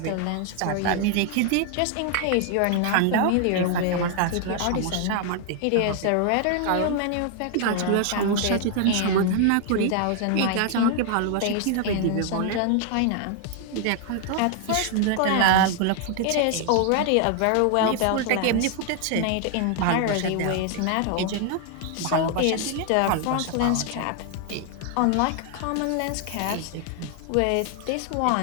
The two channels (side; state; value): both; different; correlation 0.00